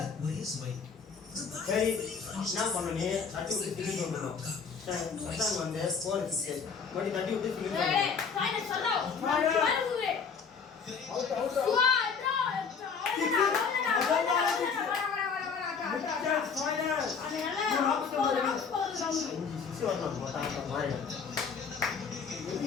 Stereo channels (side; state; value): right; quieter; 5.8 dB